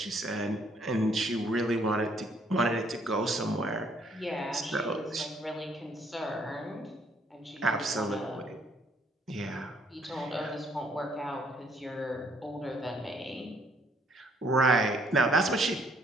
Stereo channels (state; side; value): normal; both; correlation 0.66